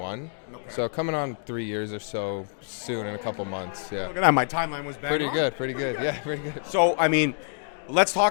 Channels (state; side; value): silent; right; 60 dB below the other